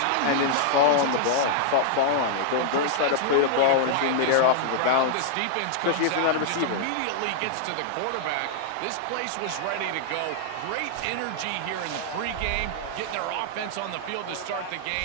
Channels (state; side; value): different; both; correlation -0.01